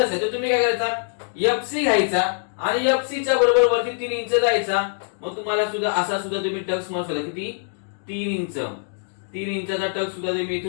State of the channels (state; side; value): silent; right; digital silence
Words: तर तुम्ही काय करायचा, एफसी घ्यायचा आणि एफसी च्या बरोबर वरती 3 इंच जायचा. मग तुम्हाला सुद्धा असा सुद्धा तुम्ही टक्स मारू शकता. किती? 3 इंच. 3 इंचाचा टक्स सुद्धा तुम्ही